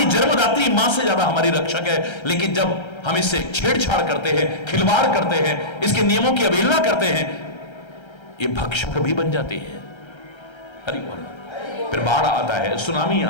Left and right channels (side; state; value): right; late; 1.3 ms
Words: जन्मदात्री मां से ज्यादा हमारी रक्षक है, लेकिन जब हम इससे छेड़छाड़ करते हैं, खिलवाड़ करते हैं, इसके नियमों की अवहेलना करते हैं, ये भक्षक भी बन जाती है। हरि बोल। फिर बाढ़ आता है, सुनामी